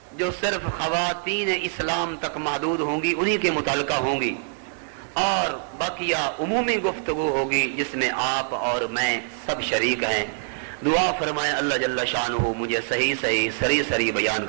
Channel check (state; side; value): silent; left; 62 dB below the other